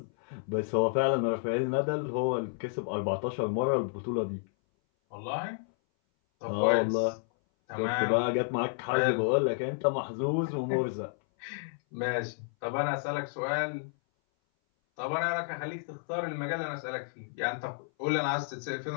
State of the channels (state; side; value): silent; right; 57 dB below the other